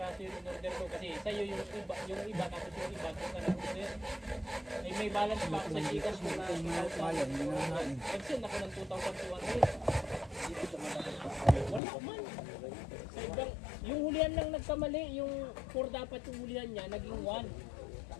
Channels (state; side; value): drops out; right; at 11.8 s